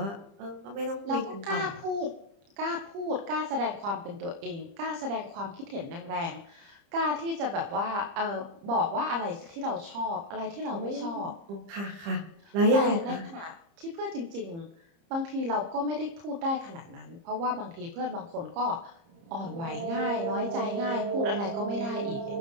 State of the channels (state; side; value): late; left; 30 ms